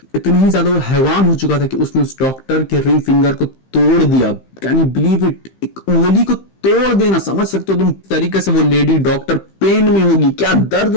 इतना ही ज्यादा वो हैवान हो चुका था कि उसने उस डॉक्टर के रिंग फिंगर को तोड़ दिया। Can you believe it? एक उंगली को तोड़ देना, समझ सकते हो तुम तरीके से वो लेडी डॉक्टर पेन में होगी, क्या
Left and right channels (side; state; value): right; late; 15 ms